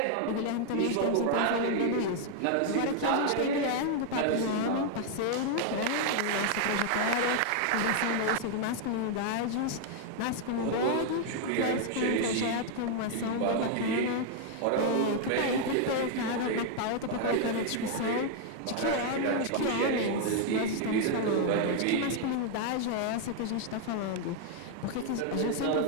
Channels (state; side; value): different; both; correlation 0.00